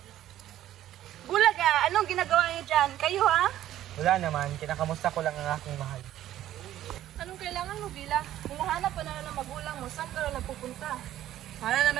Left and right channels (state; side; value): quieter; left; 12.9 dB